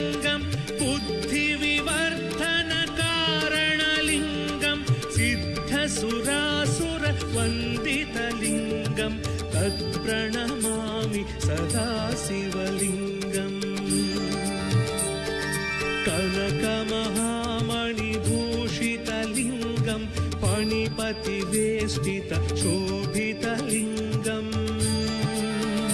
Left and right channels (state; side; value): identical; both; correlation 1.00